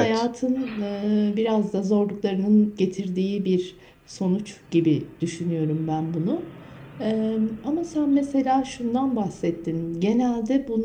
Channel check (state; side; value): identical; both; correlation 1.00